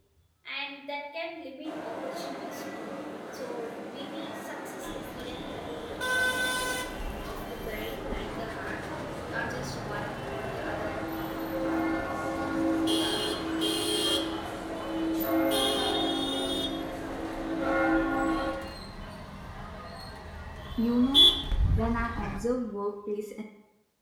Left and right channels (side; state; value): both; identical; correlation 1.00